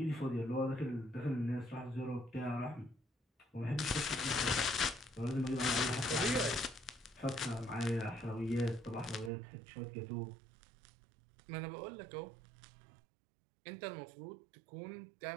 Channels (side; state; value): left; drops out; at 9.3 s